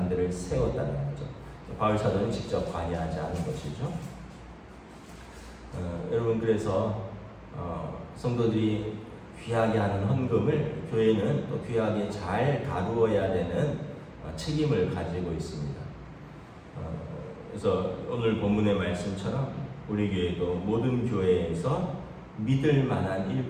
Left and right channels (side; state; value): both; identical; correlation 1.00